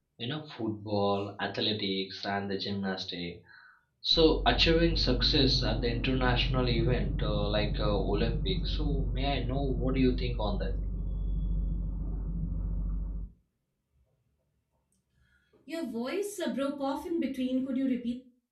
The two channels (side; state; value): both; identical; correlation 1.00